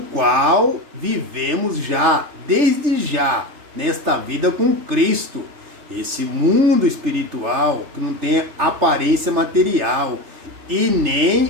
qual vivemos já, desde já, nesta vida com Cristo. Esse mundo espiritual que não tem aparência material e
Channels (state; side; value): late; left; 3.3 ms